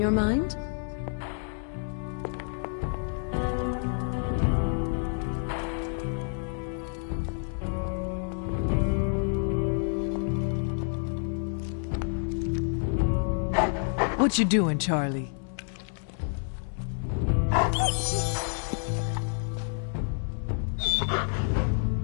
your mind? What you doing, Charlie?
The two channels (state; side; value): silent; right; 56 dB below the other